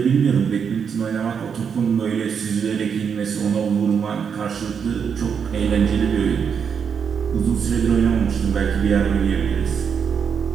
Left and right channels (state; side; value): quieter; left; 6.9 dB